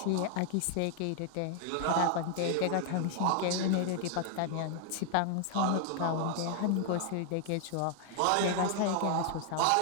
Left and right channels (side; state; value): both; different; correlation 0.00